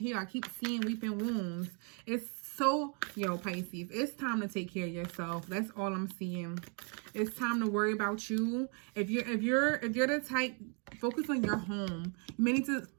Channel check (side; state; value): left; quieter; 38.0 dB